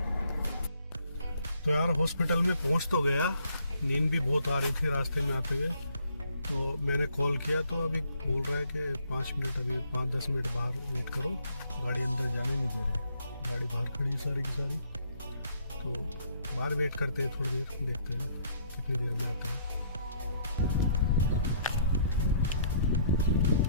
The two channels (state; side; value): inverted; both; correlation -0.65